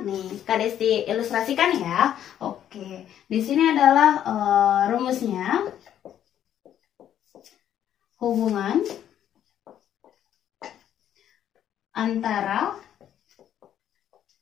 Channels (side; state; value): right; quieter; 10.4 dB